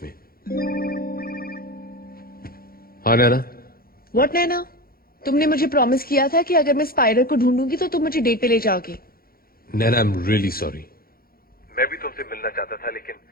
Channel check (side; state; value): right; late; 0.43 ms